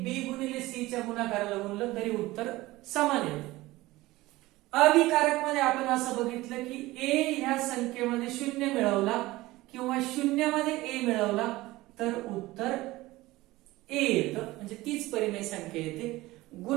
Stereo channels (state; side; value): quieter; left; 18.8 dB